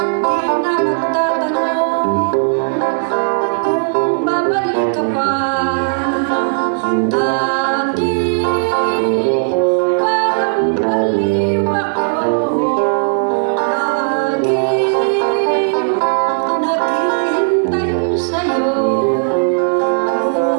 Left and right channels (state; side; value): silent; left; digital silence